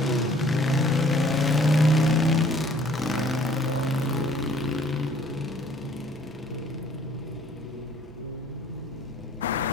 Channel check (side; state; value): both; normal; correlation 0.57